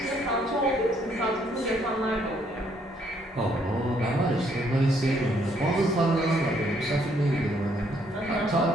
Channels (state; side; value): normal; both; correlation 0.69